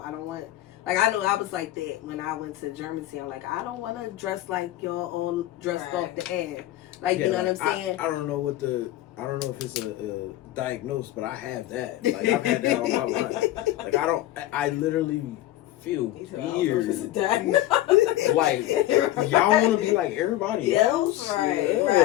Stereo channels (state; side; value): quieter; right; 14.8 dB